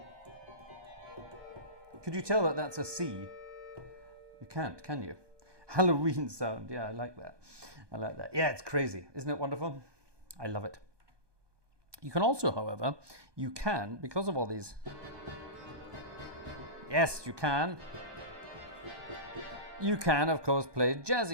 Could you tell that that's a C? You can't, can you? Halloween sound. Yeah, I like that. I like that. Yeah, it's crazy. Isn't it wonderful? I love it. You can also, however, you can, because of all these... Yes, you can. You can, of course, play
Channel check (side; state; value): left; late; 1.2 ms